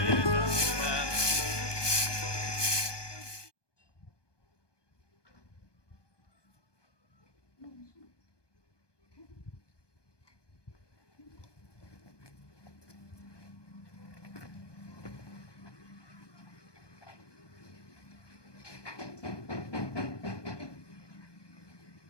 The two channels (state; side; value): late; right; 1.2 ms